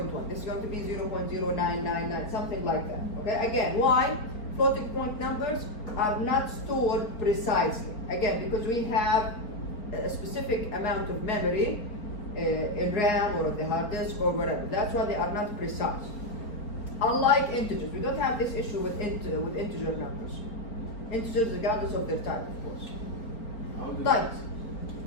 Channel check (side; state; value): right; late; 4.4 ms